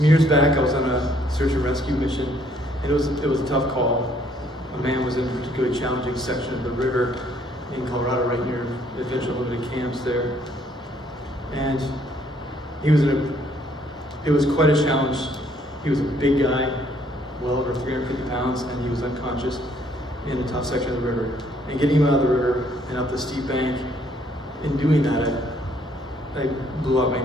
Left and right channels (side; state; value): both; normal; correlation 0.65